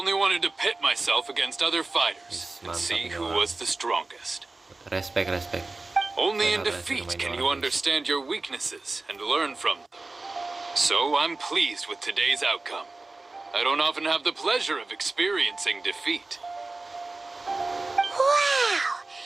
wanted to pit myself against other fighters and see who was the strongest. Respect. Only in defeat can you understand your weaknesses and learn from them. So I'm pleased with today's outcome. I don't often have the pleasure of experiencing defeat. Wow.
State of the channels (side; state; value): left; quieter; 3.3 dB